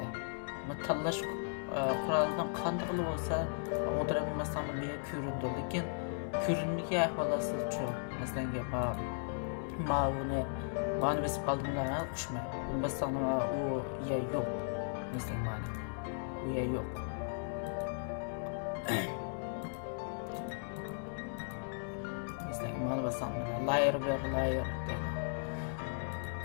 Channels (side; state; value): right; silent; digital silence